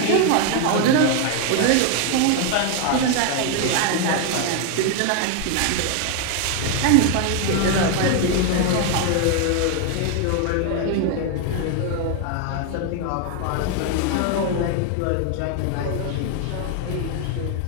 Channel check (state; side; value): different; both; correlation 0.00